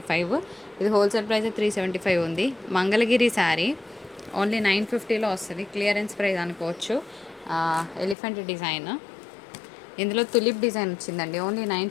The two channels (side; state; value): right; drops out; at 8.2 s